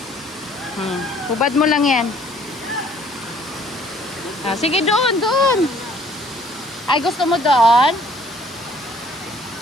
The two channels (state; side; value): normal; both; correlation 0.58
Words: Hubad mo lang yan. Ah, sige, doon, doon. Ay, gusto mo doon?